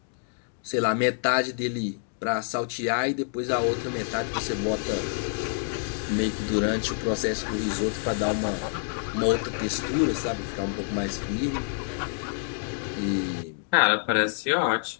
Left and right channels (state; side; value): silent; right; 60 dB below the other